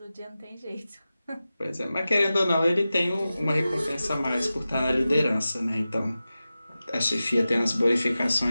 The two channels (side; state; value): both; inverted; correlation -0.94